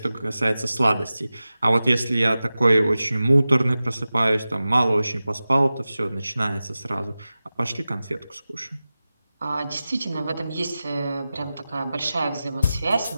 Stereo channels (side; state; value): both; inverted; correlation -0.95